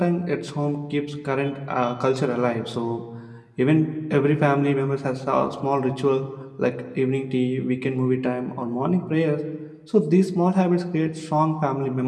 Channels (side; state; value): both; identical; correlation 1.00